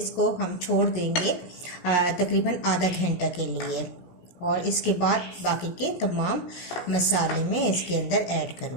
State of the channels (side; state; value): right; late; 17 ms